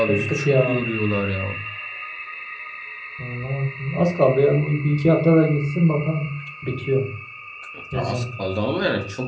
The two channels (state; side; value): identical; both; correlation 1.00